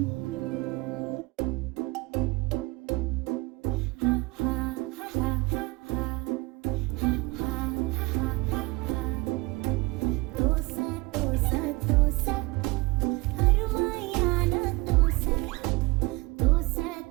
தோசை தோசை தோசை அருமையான தோசை. தோசை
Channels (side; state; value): left; quieter; 23.9 dB